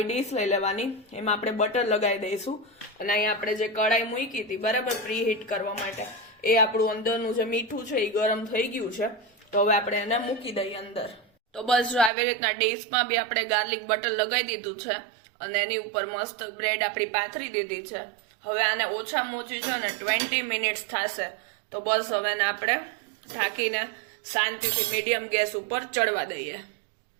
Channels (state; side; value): drops out; left; at 12.1 s